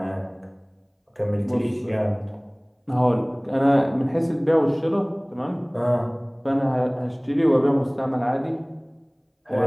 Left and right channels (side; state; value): both; identical; correlation 1.00